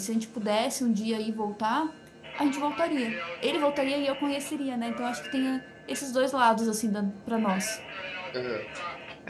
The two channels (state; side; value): identical; both; correlation 1.00